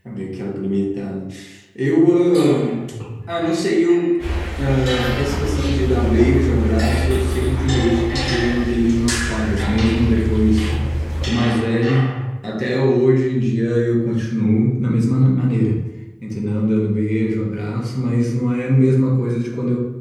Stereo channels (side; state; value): both; identical; correlation 1.00